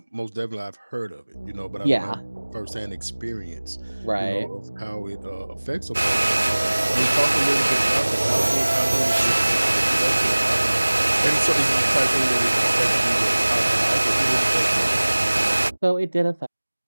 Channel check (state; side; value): inverted; both; correlation -1.00